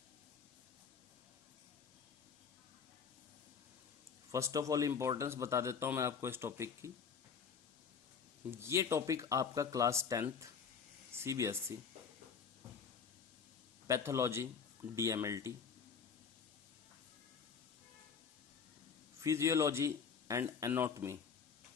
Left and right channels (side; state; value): right; quieter; 6.3 dB